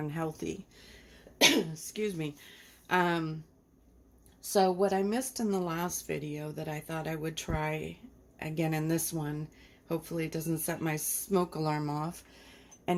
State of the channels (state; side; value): identical; both; correlation 1.00